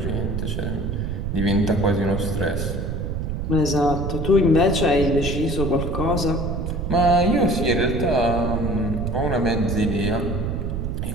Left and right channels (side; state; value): right; noise; rumble, 2 dB below the sound